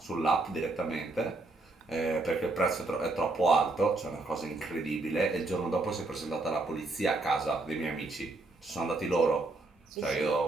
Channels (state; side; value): quieter; left; 3.1 dB